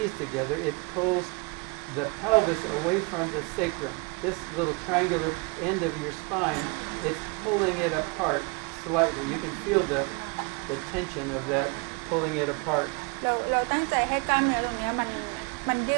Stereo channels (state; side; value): quieter; left; 30.6 dB